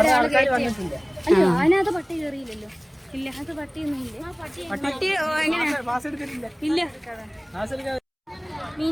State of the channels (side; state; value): both; identical; correlation 1.00